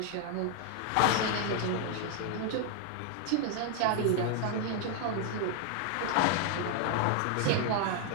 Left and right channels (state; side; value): different; both; correlation 0.00